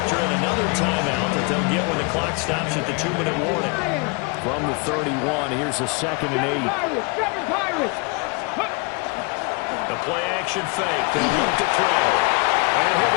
in another timeout that they'll get when the clock stops at the 2-minute warning. From the 31, here's a 2nd and 8. The play-action fake. They'll look to throw. And he'll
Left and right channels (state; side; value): quieter; right; 30.6 dB